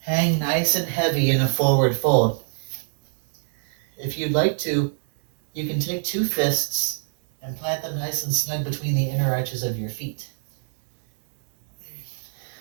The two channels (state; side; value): silent; left; digital silence